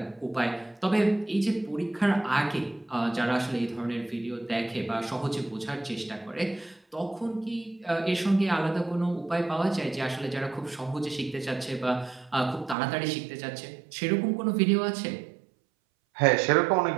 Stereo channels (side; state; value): left; drops out; at 12.8 s